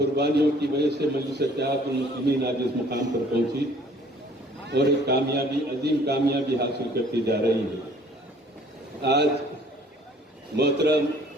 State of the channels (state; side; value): normal; both; correlation 0.56